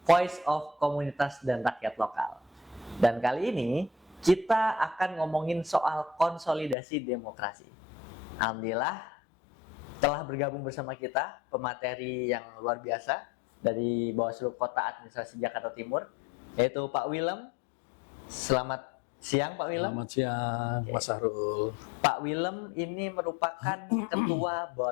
Voice of Komunitas dan Rakyat Lokal. Dan kali ini kita akan ngomongin soal konsolidasi demokrasi. Alhamdulillah telah bergabung bersama kita pemateri yang luar biasa dari Bawaslu Kota Administrasi Jakarta Timur, yaitu Pak Willem. Selamat siang Pak Willem. Selamat siang, Mas Sahrul. Pak Willem ini merupakan Ketua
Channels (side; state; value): right; drops out; at 6.8 s